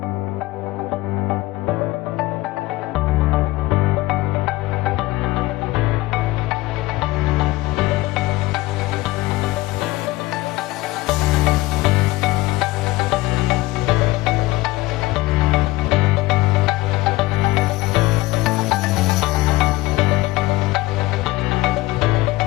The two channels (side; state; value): right; quieter; 19.7 dB